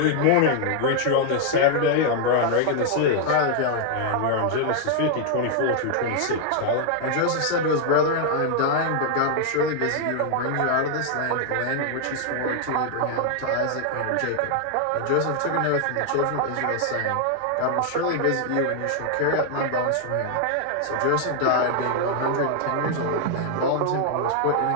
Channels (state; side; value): different; both; correlation 0.00